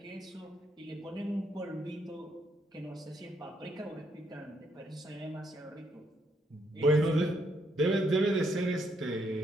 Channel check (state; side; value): normal; both; correlation 0.73